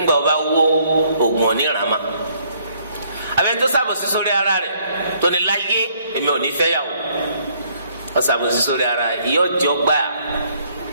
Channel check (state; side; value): inverted; both; correlation -0.66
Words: gbà ọba wó oògùn onírànmá àbẹ̀ni tó ṣàbòsí sórí ara rẹ̀ tó ní láyé èmi ò ní fẹ́ yàwó ó ṣàbòsí sórí ara rẹ̀ ìyá ọjọ́ gbà